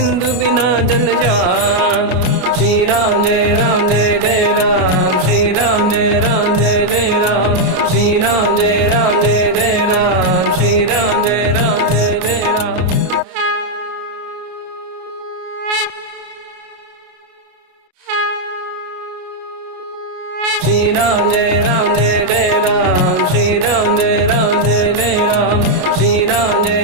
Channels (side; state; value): left; late; 33 ms